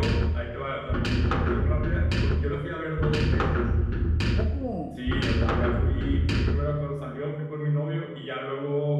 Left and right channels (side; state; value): both; identical; correlation 1.00